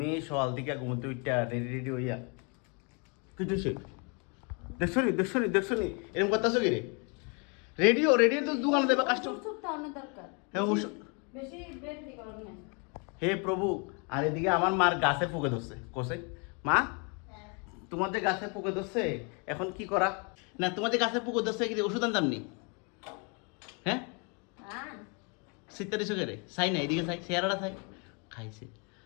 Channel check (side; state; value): right; quieter; 34.7 dB